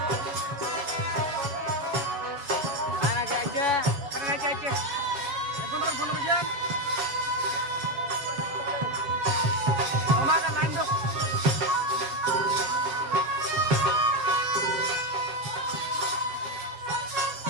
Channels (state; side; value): late; left; 7.3 ms